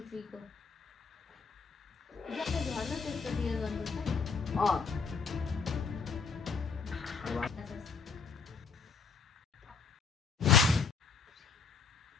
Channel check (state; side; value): quieter; right; 5.4 dB